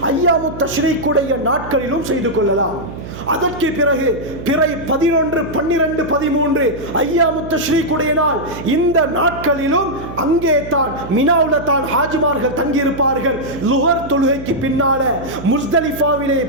ஐயாமு தஷ்ரீக்குடைய நாட்களிலும் செய்து கொள்ளலாம். அதற்கு பிறகு பிறை 11, 12, 13 ஐயாமு தஷ்ரீக்குடைய நாள், இந்த நாட்களிலும் அங்கே தான் மினாவுல தான் ஹாஜிமார்கள் தங்கியிருப்பார்கள். லுஹர் தொழுகைக்கு பின்னால முஸ்தலிஃபாவிலே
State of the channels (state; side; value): noise; right; hum, 12 dB below the sound